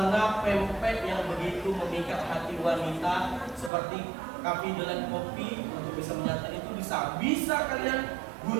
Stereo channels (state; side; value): drops out; left; at 3.7 s